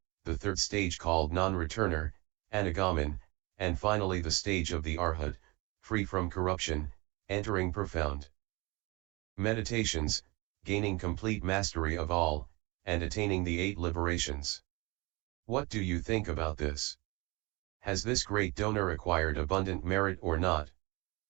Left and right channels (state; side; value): quieter; left; 25.2 dB